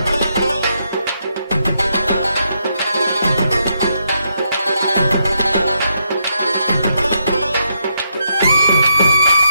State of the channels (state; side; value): inverted; both; correlation -0.78